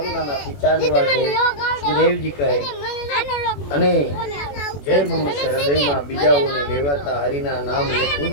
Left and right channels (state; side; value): late; right; 21 ms